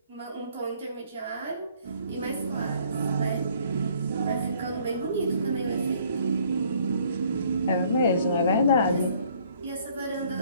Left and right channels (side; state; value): both; inverted; correlation -0.61